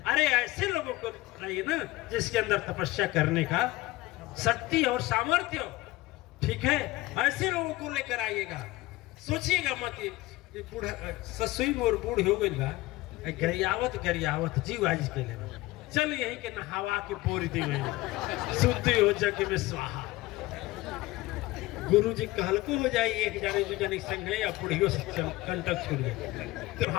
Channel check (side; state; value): right; quieter; 19.2 dB